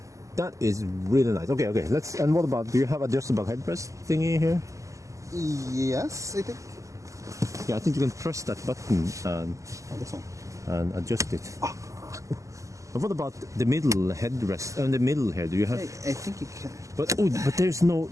that is really nice. Okay, let's. And what about? Do you have adjustable headrest thingy here? Yes, I think. Yeah, I think you can press that button and this one. And adjust it. And what about the middle headrest and the middle here? Do you have? I think you can. But there is no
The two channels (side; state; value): left; late; 0.16 ms